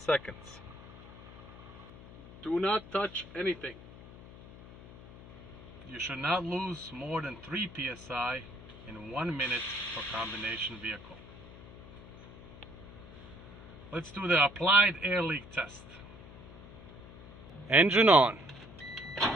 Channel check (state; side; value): noise; left; hum, 17 dB below the sound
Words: Do not touch anything. You should not lose more than 3 psi in 1 minute for combination vehicle. Let's do the applied air leak test. Engine on.